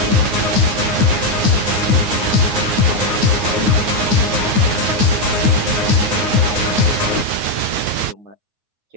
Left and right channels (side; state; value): left; late; 9.5 ms